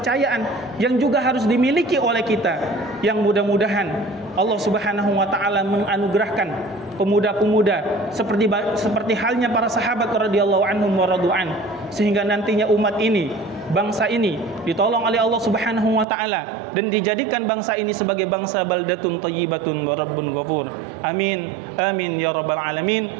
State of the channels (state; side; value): drops out; left; at 16.1 s